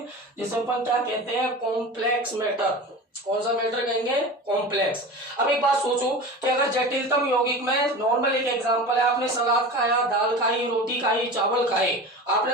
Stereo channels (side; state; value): both; normal; correlation 0.32